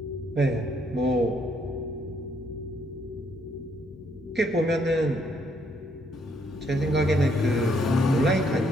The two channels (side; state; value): both; normal; correlation 0.71